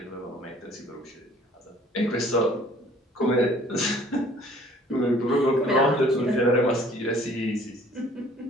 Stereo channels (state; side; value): normal; both; correlation 0.55